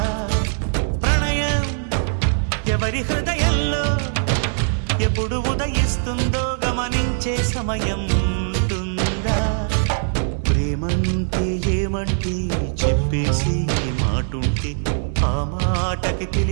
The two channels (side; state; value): left; silent; 65 dB below the other